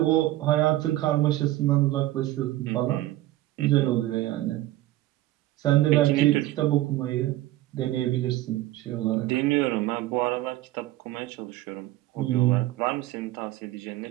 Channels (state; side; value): quieter; left; 16.1 dB